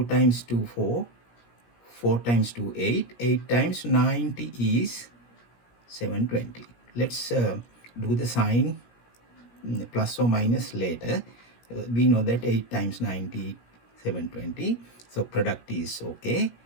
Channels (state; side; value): late; right; 17 ms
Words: times 2, 4. 4 times 2, 8. 8 times 90 is 720. Let's do the sign plus or minus later. We know that 8 times 90, 720. So product is okay.